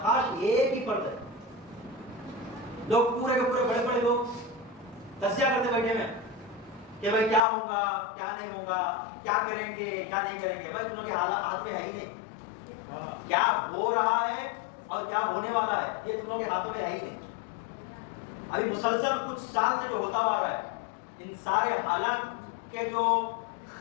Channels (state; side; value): drops out; right; at 7.4 s